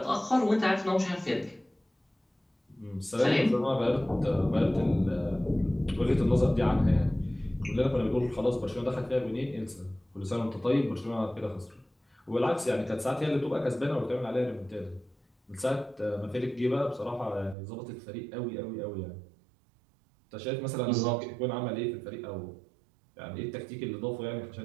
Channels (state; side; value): drops out; left; at 17.6 s